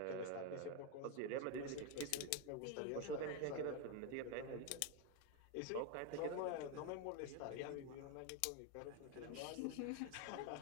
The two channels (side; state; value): both; different; correlation 0.02